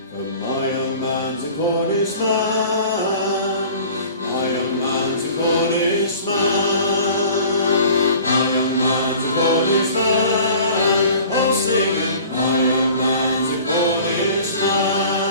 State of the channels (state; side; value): inverted; both; correlation -0.46